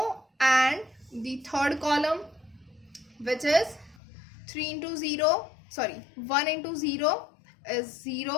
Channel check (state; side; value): drops out; right; at 4.0 s